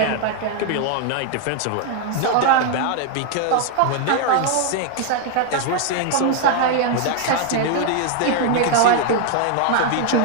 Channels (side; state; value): both; different; correlation 0.00